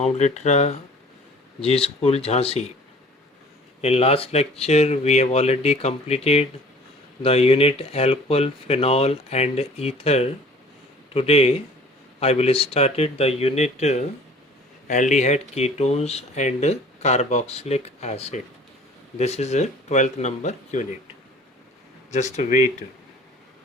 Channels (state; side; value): normal; both; correlation 0.49